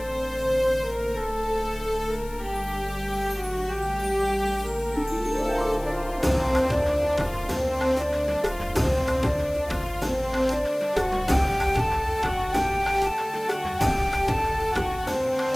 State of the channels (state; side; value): noise; left; hiss, 20 dB below the sound